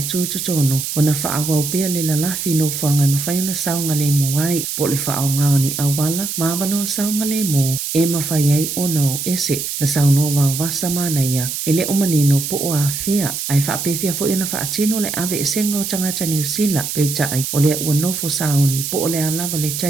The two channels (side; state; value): right; noise; hiss, 4 dB below the sound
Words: tutono o na whaawa o bea le lalafi no whanga ma whaiona saunga le mo ai po le whaao ngao ni awala ma wano saunga le mo e mawhai ai ono ese na sauno wau wasa mana ia e le o manino po o a fea ai whaapewhia fo ina whaatino le ave e senga o tangata New Zealand peitai o le ua nofo sauni po o le alava le